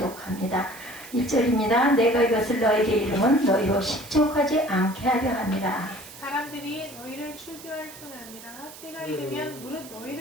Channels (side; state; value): right; noise; hiss, 17 dB below the sound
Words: 1절입니다. 내가 이것을 너에게 이름은 너희로 실족하지 않게 하려 함이라. 사람들이 너희를 출교할 뿐 아니라 때가 이르면 무릇